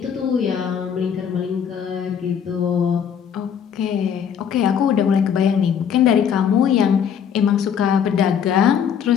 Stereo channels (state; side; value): quieter; right; 7.9 dB